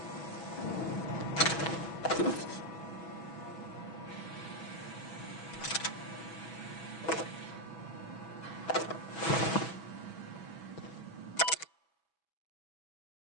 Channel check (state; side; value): late; right; 6.1 ms